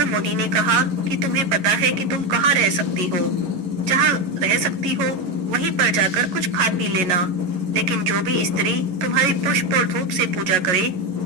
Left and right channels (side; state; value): left; late; 11 ms